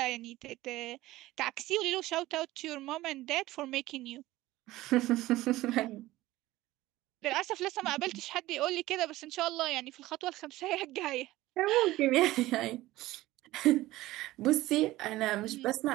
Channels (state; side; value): quieter; left; 17.2 dB